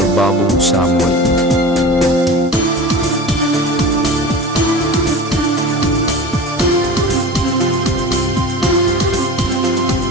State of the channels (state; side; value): normal; both; correlation 0.34